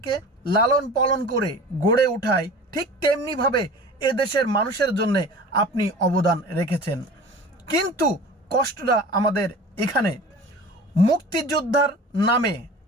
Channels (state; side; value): normal; both; correlation 0.39